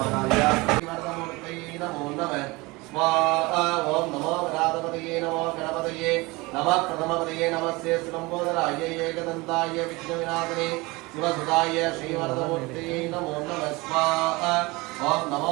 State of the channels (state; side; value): quieter; left; 23.6 dB